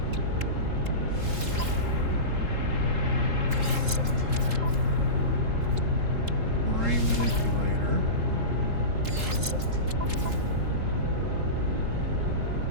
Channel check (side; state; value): left; late; 3.7 ms